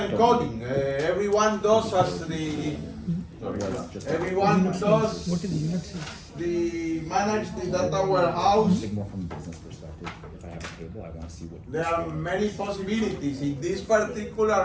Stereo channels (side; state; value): both; identical; correlation 1.00